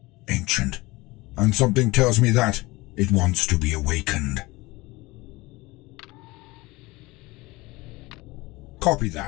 Ancient. And something tells me that it wants to be awakened. Copy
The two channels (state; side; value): quieter; right; 21.7 dB